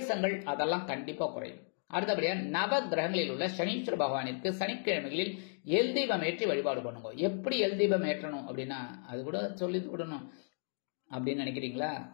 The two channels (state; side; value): silent; right; 55 dB below the other